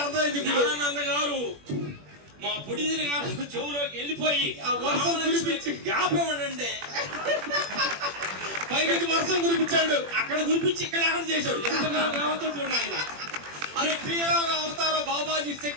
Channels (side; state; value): left; late; 21 ms